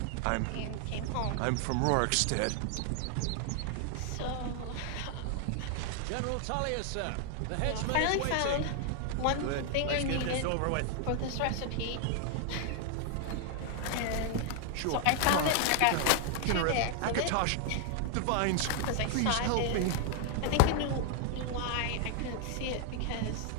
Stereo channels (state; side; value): different; both; correlation 0.00